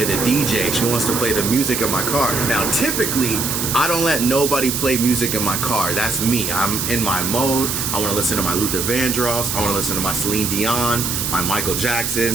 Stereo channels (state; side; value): noise; right; hiss, 1 dB below the sound